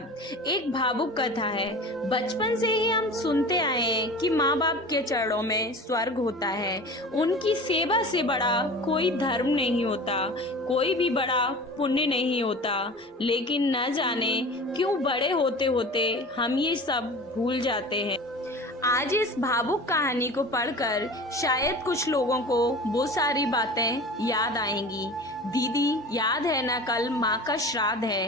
एक भावुक कथा है। बचपन से ही हम सुनते आए हैं कि माँ बाप के चरणों में स्वर्ग होता है। उनकी सेवा से बड़ा कोई धर्म नहीं होता, कोई भी बड़ा पुण्य नहीं होता। लेकिन न जाने क्यों बड़े होते होते हम ये सब भूल जाते हैं। आज इस भावुक कहानी को पढ़कर शायद कुछ लोगों को वो सारी बातें याद आएंगी। दीदी, याद है ना, कल माँ का श्राद्ध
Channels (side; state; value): both; normal; correlation 0.37